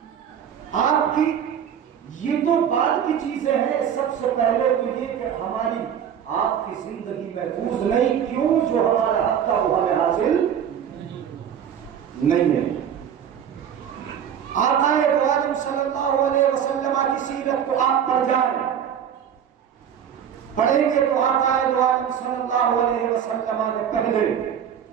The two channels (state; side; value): quieter; left; 8.7 dB